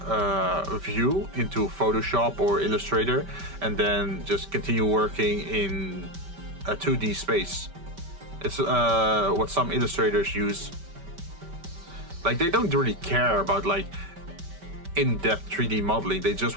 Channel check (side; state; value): left; late; 5.1 ms